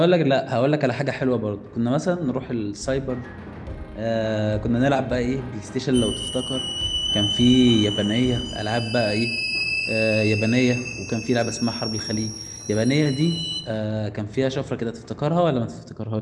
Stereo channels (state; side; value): identical; both; correlation 1.00